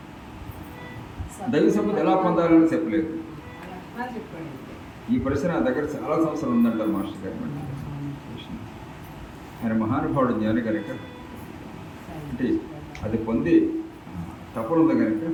దైవ సంపద ఎలా పొందాలని చెప్పలేదు. ఈ ప్రశ్న నా దగ్గర చాలా సంవత్సరాలు ఉందంటారు మాస్టర్ గారు. ఆయన మహానుభావుడు జ్ఞాని కనుక, అంటే అది పొంది తపన ఉంది కనుక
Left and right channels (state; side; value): identical; both; correlation 1.00